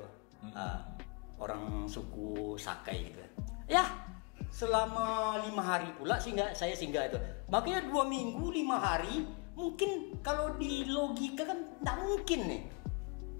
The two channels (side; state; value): right; quieter; 31.0 dB